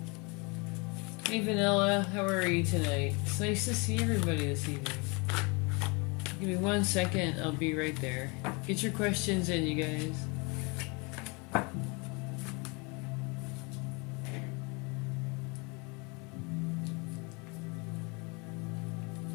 Hey Vanilla, how are you tonight? It's nice to see everybody this evening. Give me 1 second, I'll be right there. Get your questions in, you guys.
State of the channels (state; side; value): quieter; right; 29.9 dB